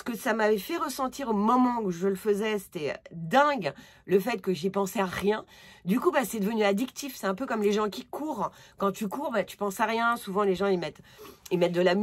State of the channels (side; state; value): both; identical; correlation 1.00